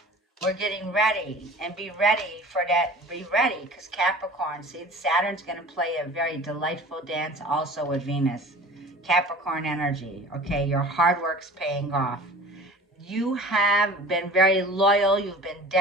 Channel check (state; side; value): normal; both; correlation 0.43